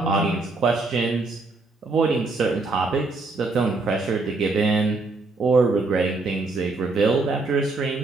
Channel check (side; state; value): left; quieter; 3.5 dB